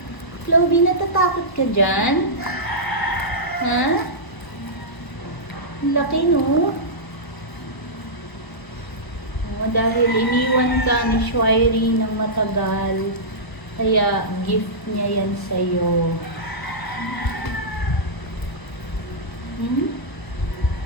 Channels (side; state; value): right; late; 1.0 ms